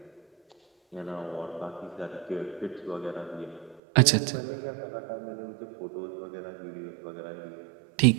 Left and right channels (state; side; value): drops out; left; at 3.8 s